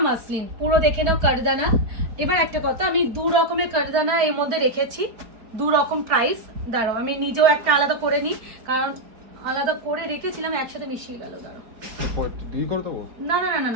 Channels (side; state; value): left; late; 4.7 ms